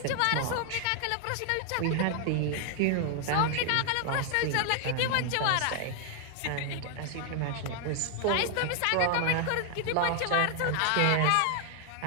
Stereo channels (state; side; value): different; both; correlation 0.00